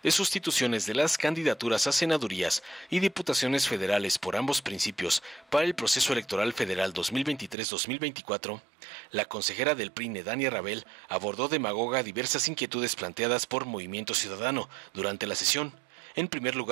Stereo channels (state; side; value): drops out; left; at 7.6 s